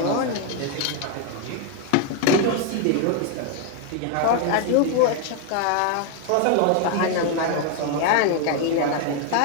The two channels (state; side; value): different; both; correlation 0.01